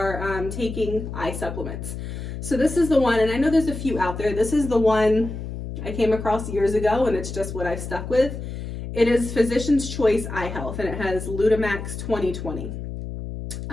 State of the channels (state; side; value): noise; left; hum, 7 dB below the sound